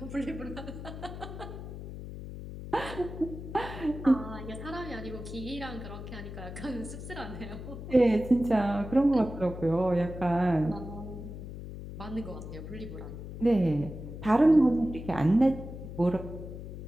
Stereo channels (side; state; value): left; noise; hum, 10 dB below the sound